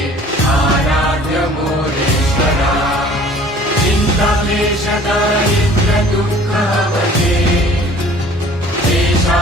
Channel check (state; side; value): normal; both; correlation 0.50